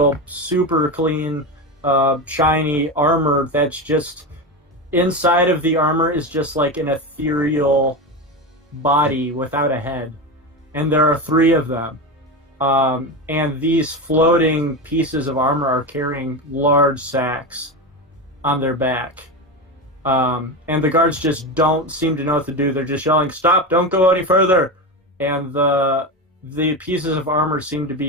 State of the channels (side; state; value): both; normal; correlation 0.19